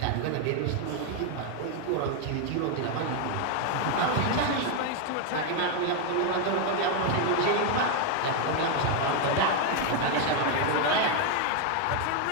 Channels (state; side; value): different; both; correlation 0.01